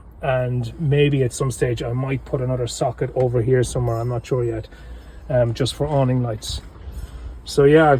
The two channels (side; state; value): both; identical; correlation 1.00